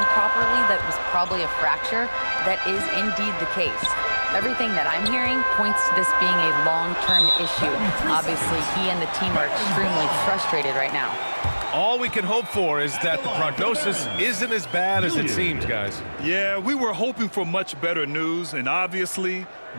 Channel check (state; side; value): inverted; both; correlation -1.00